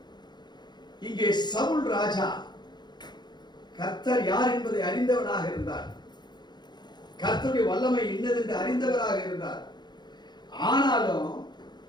இங்கே சவுல் ராஜா கர்த்தர் யார் என்பதை அறிந்தவனாக இருந்தார். கர்த்தருடைய வல்லமை இன்னதென்று அறிந்தவராக இருந்தார். ஆனாலும்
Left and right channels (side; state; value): right; late; 0.21 ms